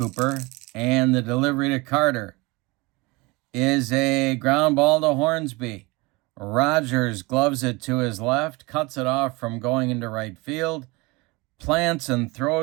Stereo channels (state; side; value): quieter; left; 24.6 dB